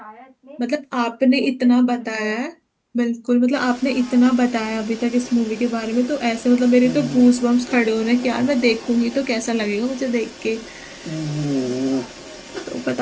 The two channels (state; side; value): identical; both; correlation 1.00